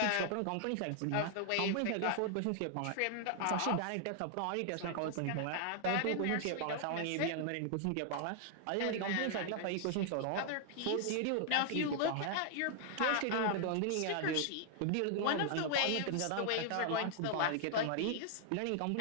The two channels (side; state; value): both; different; correlation 0.00